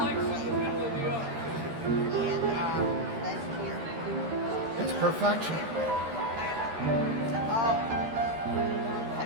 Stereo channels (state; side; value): late; left; 13 ms